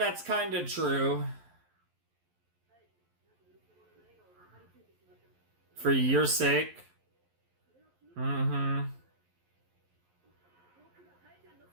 kind of true. For your sake. Mm-hmm.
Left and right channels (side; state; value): left; late; 11 ms